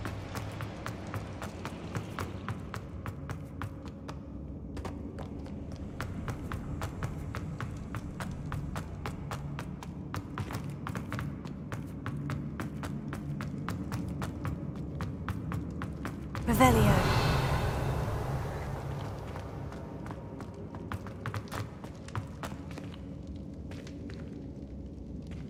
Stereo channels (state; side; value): identical; both; correlation 1.00